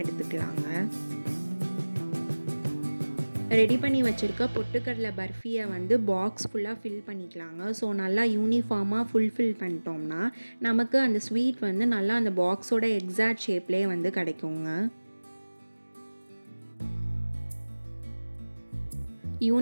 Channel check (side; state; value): both; inverted; correlation -1.00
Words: எடுத்துக்கலாங்க. ரெடி பண்ணி வச்சுருக்க பொட்டுக்கடலை பர்ஃபியை வந்து பாக்ஸ் ஃபுல்லாக ஃபில் பண்ணிக்கலாங்க. ஸோ நல்லா யூனிஃபார்மாக ஃபில் பண்ணிட்டோம்னா நமக்கு அந்த ஸ்வீட் வந்து நல்லா அந்த பாக்ஸோட எக்ஸாக்ட் ஷேப்லேயே வந்து கிடைக்குங்க.